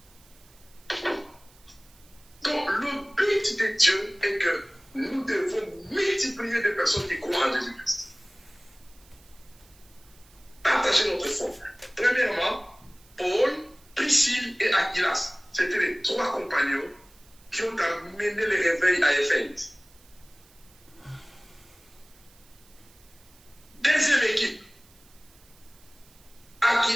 Donc, le but de Dieu est que nous devons multiplier des personnes qui croient en Jésus-Christ. Partager notre foi. Premièrement, Paul, Priscille et Aquilas. C'était les 3 compagnons qui ont amené le réveil à Éphèse. Deuxième équipe.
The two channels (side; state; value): right; noise; hiss, 27 dB below the sound